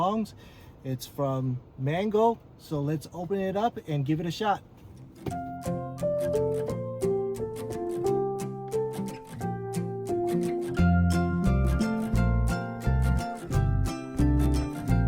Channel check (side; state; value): both; identical; correlation 1.00